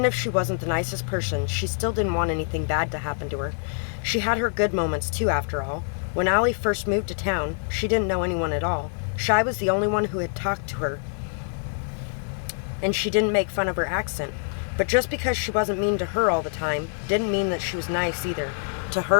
if she wasn't the nicest person, she still didn't want anything bad to happen to her. She had her good moments too, after all. When Allie first moved to town, she didn't know anyone at all. Shy was the only one who had talked to her, and she didn't make fun of her accent. But just because she wasn't mean to her all the time, didn't mean that she was nice either, to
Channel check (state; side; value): silent; right; 56 dB below the other